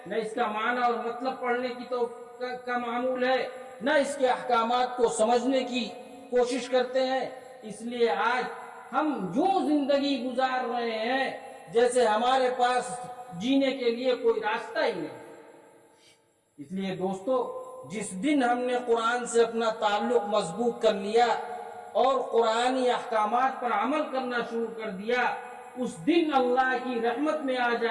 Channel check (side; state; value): both; identical; correlation 1.00